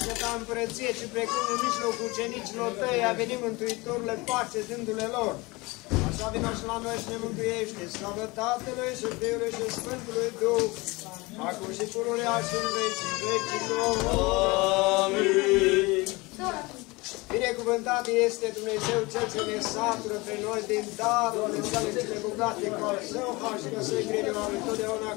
ta împărăție, ci precum în mijlocul ucenicilor tăi a venit Mântuitorule pace dându-le lor. Așa vină și la noi și ne mântuiește. Slavă Tatălui și Fiului și Sfântului Duh, acum și pururea și în vecii vecilor. Amin. Binecuvântat este Dumnezeu Cel ce ne satură pe noi din darurile sale cele bogate cu al său har și găsui grijă lui totdeauna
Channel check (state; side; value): quieter; right; 23.8 dB